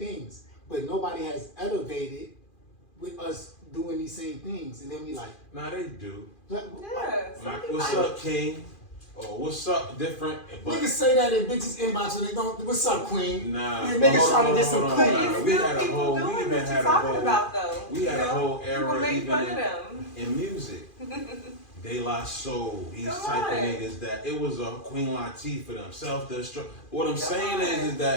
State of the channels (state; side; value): late; right; 2.4 ms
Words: but nobody has elevated with us doing these same things. And then we like, nah, they do. like, Like, what's up, King? Or what's up, different? Niggas say that in bitches inbox and they don't. What's up, Queen? Nah, yeah, niggas trying to get some Queen. We had a whole. We even had a whole. About, though. We had a whole era even in music. De La Soul, these type of niggas that it was a Queen Latifah for them, self-destruct. What I'm saying is